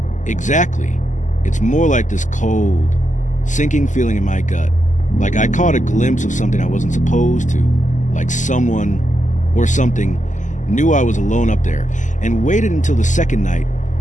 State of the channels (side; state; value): right; late; 0.36 ms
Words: Exactly. It's more like this cold, sinking feeling in my gut. Like I caught a glimpse of something I wasn't supposed to. Like someone or something knew I was alone up there and waited until the second night